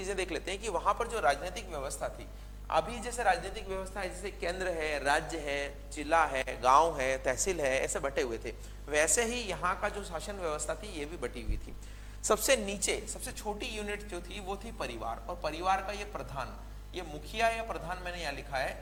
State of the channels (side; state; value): both; identical; correlation 1.00